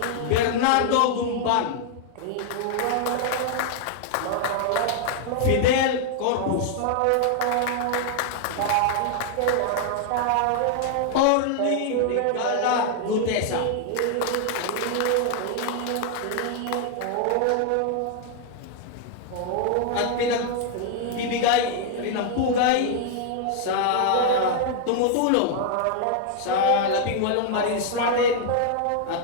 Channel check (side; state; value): both; different; correlation 0.00